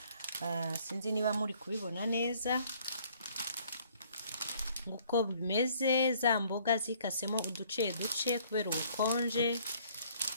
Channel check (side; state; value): both; inverted; correlation -0.60